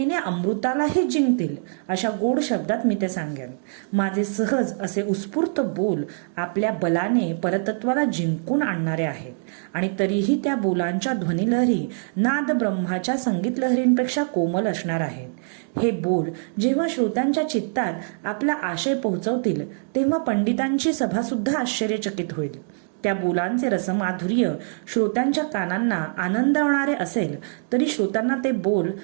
अमृतालाही जिंकतील अशा गोड शब्दात मी ते सांगेन. माझे सहज असे उत्स्फूर्त बोल आपल्या बलाने परतत्वाला जिंकून आणणारे आहेत आणि तरीही त्या बोलांच्या ध्वनिलहरी नाद ब्रह्माच्या संगीत लहरींपेक्षा कोमल असणार आहेत. हे बोल जेव्हा श्रोत्यांच्या चित्तात आपला आशय पोहोचवतील तेव्हा पंडितांची सभा सुद्धा आश्चर्यचकित होईल. त्या बोलांचे रसमाधुर्य श्रोत्यांच्या कानांना आनंदवणारे असेल तरी श्रोत्यांना ते बोल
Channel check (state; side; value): silent; left; digital silence